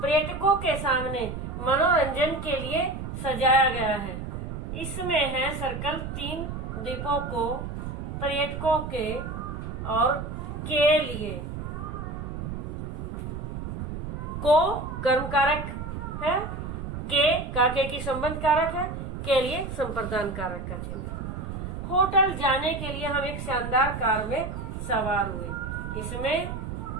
पर्यटकों के सामने मनोरंजन के लिए सजाया गया है, इसमें है सर्कल। 3 द्वीपों को पर्यटकों के और के लिए। को कर्म कारक है, के की संबंध कारक है, के लिए संप्रदान कारक का चिन्ह। होटल जाने के लिए हम एक शानदार कार में सवार हुए, इसमें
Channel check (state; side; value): noise; right; rumble, 6 dB below the sound